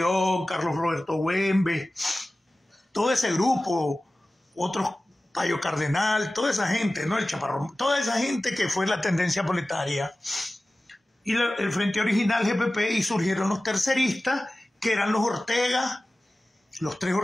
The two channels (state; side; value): normal; both; correlation 0.96